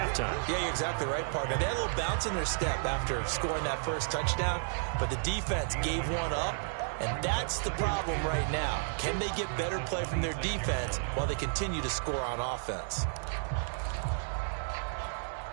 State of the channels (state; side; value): silent; left; 56 dB below the other